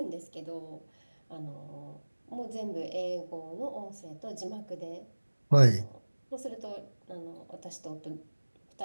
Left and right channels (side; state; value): both; inverted; correlation -1.00